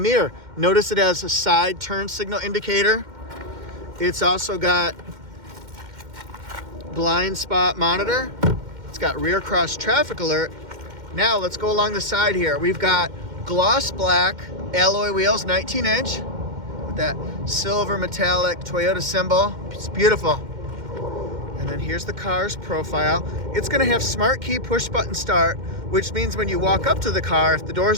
Notice it has a side turn signal indicator. It's also got blind spot monitor. It's got rear cross traffic alert. Now let's go along the side here. We've got gloss black alloy wheels, 19-inch, with that silver metallic Toyota symbol. It's beautiful. And then here's the car's profile. It's gonna have smart key push button start, which means when you walk up to the car, if the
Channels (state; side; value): late; left; 2.1 ms